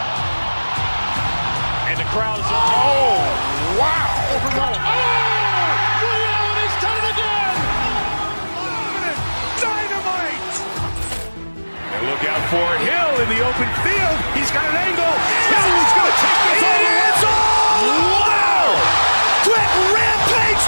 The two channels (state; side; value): inverted; both; correlation -1.00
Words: And the crowd is, oh, wow. Ray Allen has done it again. Dynamite. And look out for Hill in the open field. He's got an angle. He's going to take this all the way. Wow. Quick Rampage